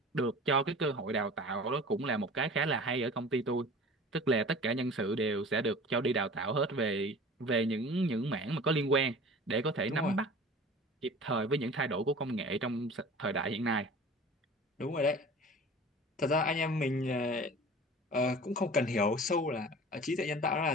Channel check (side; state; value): both; normal; correlation 0.41